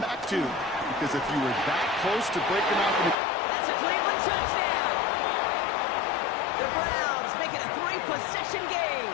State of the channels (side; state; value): right; drops out; at 3.2 s